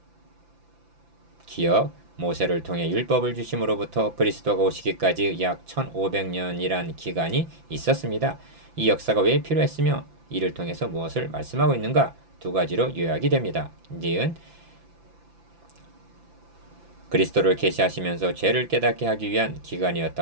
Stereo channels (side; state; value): left; late; 5.9 ms